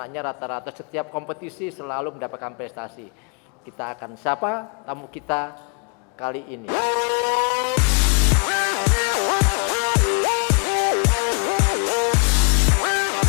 rata-rata setiap kompetisi selalu mendapatkan prestasi. Kita akan sapa tamu kita kali ini.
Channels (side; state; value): right; quieter; 38.1 dB